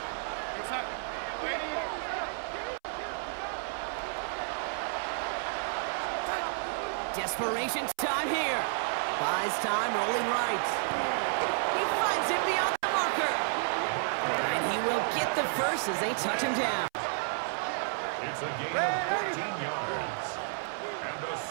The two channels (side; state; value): left; silent; 57 dB below the other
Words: Desperation time here. Buys time, rolling right. He finds him beyond the marker. And he will get the first as they touch him down. it's a gain of 14 yards. And the